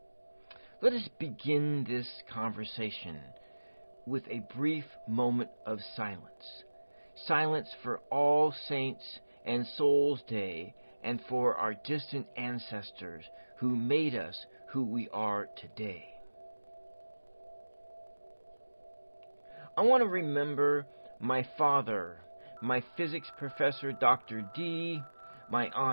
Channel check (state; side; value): inverted; both; correlation -1.00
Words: Let us begin this conversation with a brief moment of silence. Silence for All Saints and Souls Day and for our distant ancestors who made us who we are today. I want to remember my father, my physics professor Dr. D, my